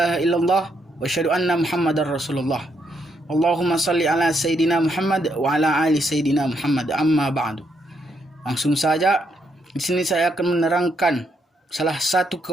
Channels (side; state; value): both; normal; correlation 0.76